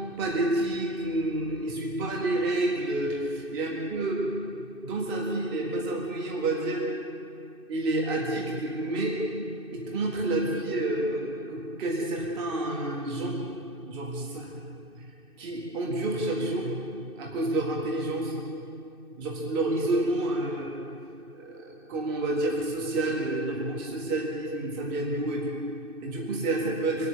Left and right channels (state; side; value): late; left; 2.6 ms